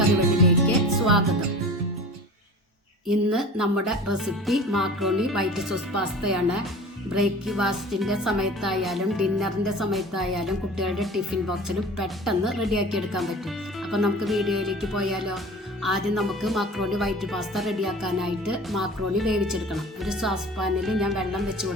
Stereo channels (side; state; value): both; normal; correlation 0.39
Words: സ്വാഗതം. ഇന്ന് നമ്മുടെ റെസിപ്പി മാക്രോണി വൈറ്റ് സോസ് പാസ്തയാണ്. ബ്രേക്ക്ഫാസ്റ്റിൻ്റെ സമയത്തായാലും ഡിന്നറിൻ്റെ സമയത്തായാലും കുട്ടികളുടെ ടിഫിൻ ബോക്സിനും പെട്ടെന്ന് റെഡിയാക്കി എടുക്കാൻ പറ്റും. അപ്പം നമുക്ക് വീഡിയോയിലേക്ക് പോയാലോ. ആദ്യം നമുക്ക് മാക്രോണി വൈറ്റ് പാസ്ത റെഡിയാക്കാനായിട്ട് മാക്രോണി വേവിച്ചെടുക്കണം. ഒരു സോസ് പാനിൽ ഞാൻ വെള്ളം വെച്ച്